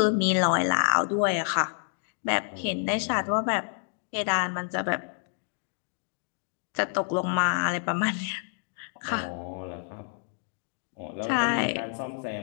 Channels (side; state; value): right; silent; 59 dB below the other